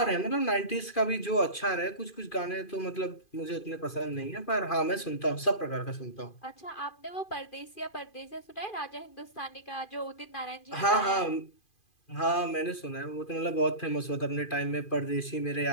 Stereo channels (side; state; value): right; late; 2.4 ms